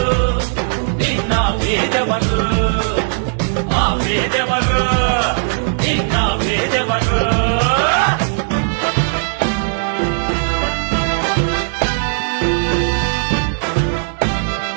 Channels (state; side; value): silent; left; digital silence